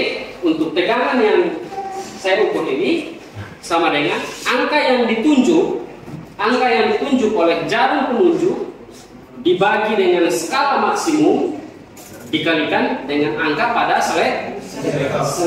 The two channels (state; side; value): identical; both; correlation 1.00